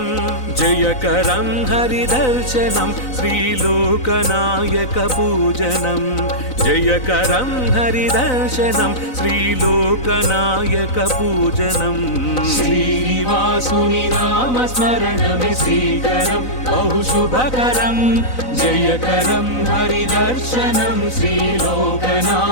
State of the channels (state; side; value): late; right; 3.9 ms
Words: జయకరం హరిదర్శనం శ్రీలోకనాయక పూజనం జయకరం హరిదర్శనం శ్రీలోకనాయక పూజనం श्रीनिवासुनि नामस्मरणमे श्रीकरं बहुशुभकरं जयकरं हरिदर्शनं